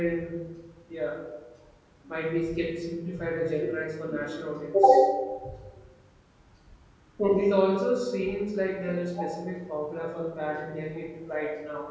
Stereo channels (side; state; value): both; identical; correlation 1.00